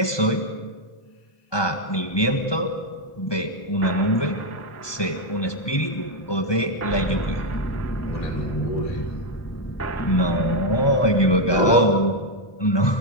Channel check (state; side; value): late; right; 1.2 ms